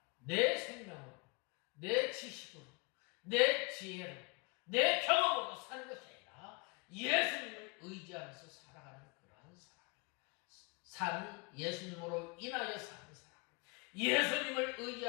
내 생명으로, 내 지식으로, 내 지혜로, 내 경험으로 사는 것이 아니라 예수님을 의지하면서 살아가는 그러한 사람, 예수님으로 인하여 사는 사람, 예수님을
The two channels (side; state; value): right; quieter; 31.1 dB